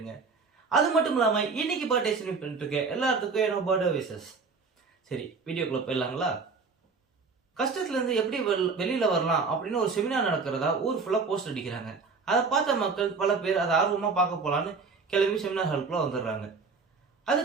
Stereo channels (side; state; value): left; quieter; 4.7 dB